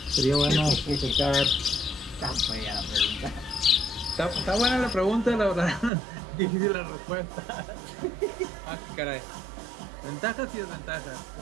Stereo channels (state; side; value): drops out; left; at 5.9 s